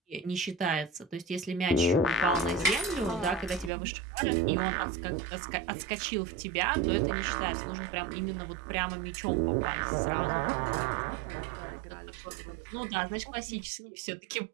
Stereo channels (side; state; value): left; drops out; at 3.7 s